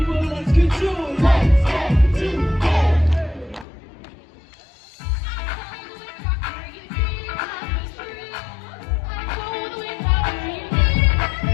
let's get to it. Let's get to it.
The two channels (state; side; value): drops out; right; at 3.7 s